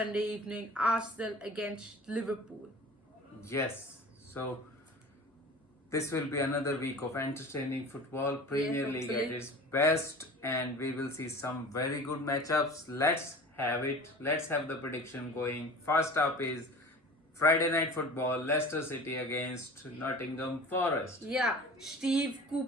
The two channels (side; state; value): both; normal; correlation 0.39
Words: evening Arsenal against Liverpool. Yes, so this will be another week of entertaining football. Premier League at hopefully. its best, and we will see some very good matchups. Let's have it. Let's have the prediction going. First up is Friday night football, Leicester City against Nottingham Forest. Yeah, Steve